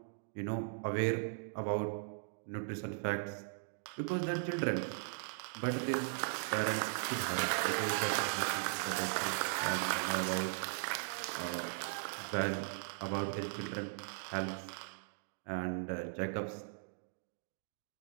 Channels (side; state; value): left; silent; digital silence